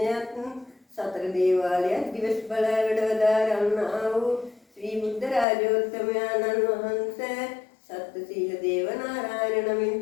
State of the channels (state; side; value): drops out; right; at 5.5 s